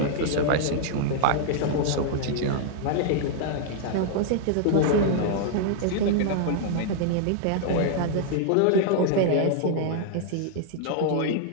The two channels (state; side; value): different; both; correlation -0.01